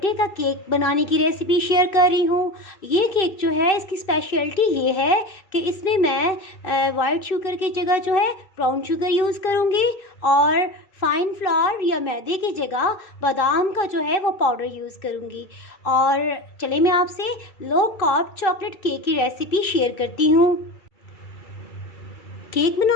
का केक बनाने की रेसिपी शेयर कर रही हूँ। ये केक जो है, इसकी स्पेशलिटी ये है कि इसमें मैं वाइट शुगर की जगह जो है ब्राउन शुगर यूज़ करूँगी और फाइन फ्लावर या मैदे की जगह बादाम का जो है वो पाउडर यूज़ करूँगी। और चले मैं आपसे लो कार्ब चॉकलेट केक की रेसिपी शेयर करती हूँ। केक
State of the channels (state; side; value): late; right; 2.6 ms